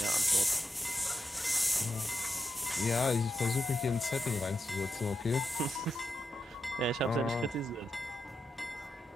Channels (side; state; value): both; normal; correlation 0.86